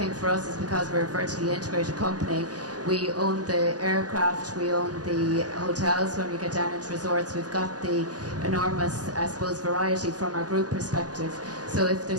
for us is because we're a vertically integrated company, we own the aircraft, we own the hotels. When we get down into resorts, we've got the enormous, I suppose, variety from our group perspective. So if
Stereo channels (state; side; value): late; left; 0.68 ms